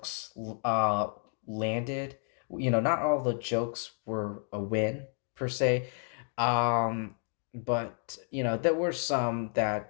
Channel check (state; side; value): silent; right; 57 dB below the other